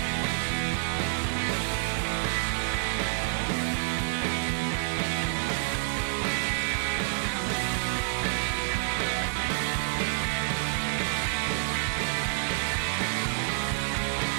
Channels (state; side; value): silent; left; 59 dB below the other